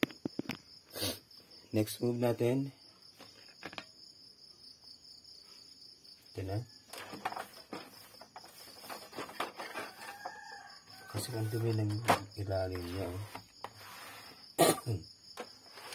Next move natin. Ito na. Kasi ang dumi ng ilalim niya.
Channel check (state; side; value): identical; both; correlation 1.00